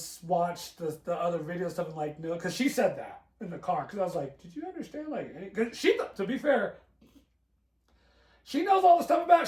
watched the other video stuff, and like, no, because she said that in the car. Because I was like, did you understand? Like, cause to be fair, she knows all the stuff about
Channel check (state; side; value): identical; both; correlation 1.00